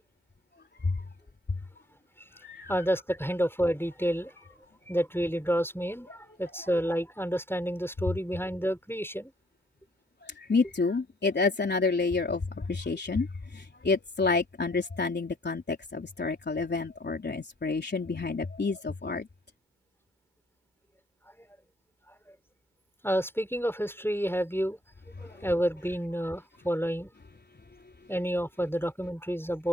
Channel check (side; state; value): both; normal; correlation 0.67